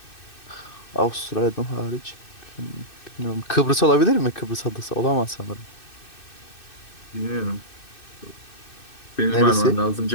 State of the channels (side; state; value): right; late; 2.6 ms